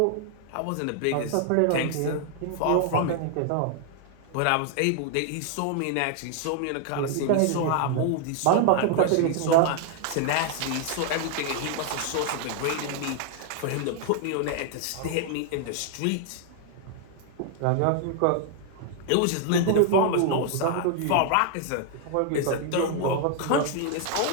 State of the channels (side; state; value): both; different; correlation 0.00